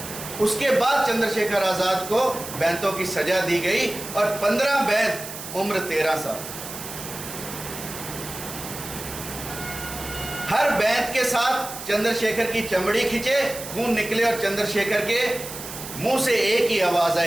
उसके बाद चंद्रशेखर आजाद को बैंतों की सजा दी गई और 15 बैंत उम्र 13 साल। हर बैंत के साथ चंद्रशेखर की चमड़ी खींचे, खून निकले और चंद्रशेखर के मुंह से एक ही आवाज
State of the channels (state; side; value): noise; right; hiss, 10 dB below the sound